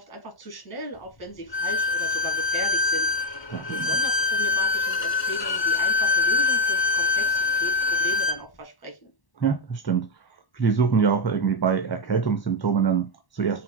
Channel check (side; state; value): right; late; 1.2 ms